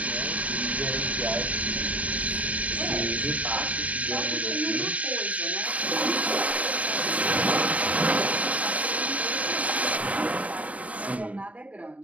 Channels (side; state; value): left; late; 0.068 ms